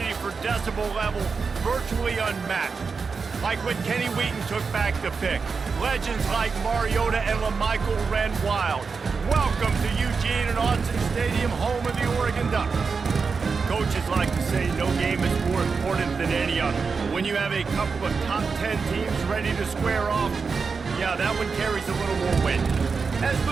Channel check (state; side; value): quieter; left; 5.0 dB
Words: for decibel level virtually unmatched. Like when Kenny Wheaton took back the pick. Legends like Mariota and LaMichael ran wild. Welcome to Eugene and Austin Stadium, home of the Oregon Ducks. Coaches like to say no game is more important than any other. When you have a couple of top 10 teams ready to square off, yeah, that one carries a little more weight. As